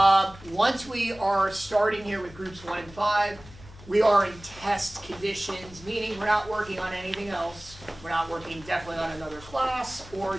Once we are starting here with groups 1 and 5, we are in test conditions, meaning we're not working on anything else. We're not working definitely on another class or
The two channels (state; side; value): noise; left; hum, 19 dB below the sound